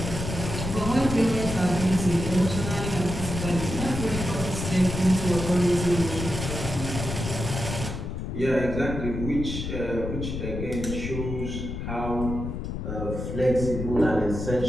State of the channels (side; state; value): left; noise; rumble, 5 dB below the sound